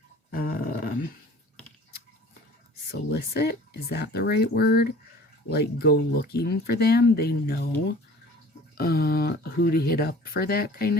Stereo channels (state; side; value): normal; both; correlation 0.46